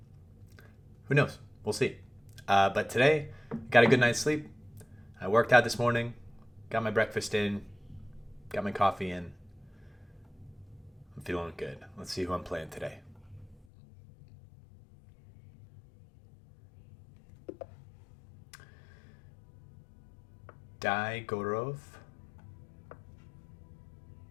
who knows? We'll see. But today, got a good night's sleep. I worked out this morning, got my breakfast in, got my coffee in. I'm feeling good. Let's see who I'm playing today. Gorov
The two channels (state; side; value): drops out; right; at 13.7 s